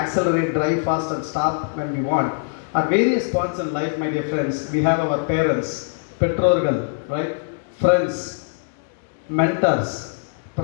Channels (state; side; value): silent; right; digital silence